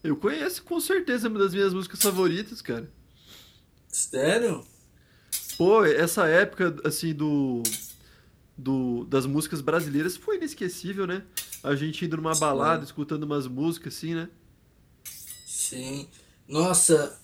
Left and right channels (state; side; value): identical; both; correlation 1.00